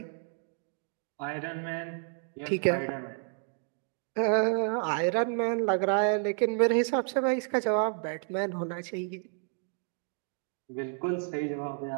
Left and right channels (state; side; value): silent; left; 57 dB below the other